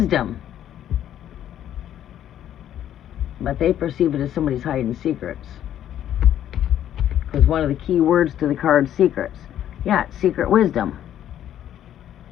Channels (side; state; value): right; quieter; 11.0 dB